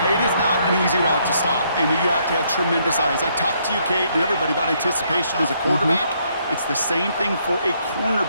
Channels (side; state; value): both; inverted; correlation -0.71